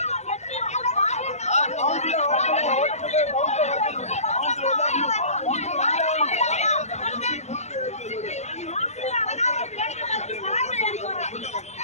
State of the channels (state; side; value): late; right; 0.32 ms